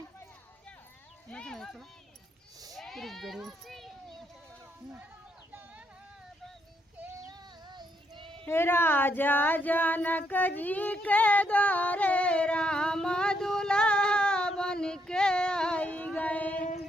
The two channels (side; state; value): both; normal; correlation 0.75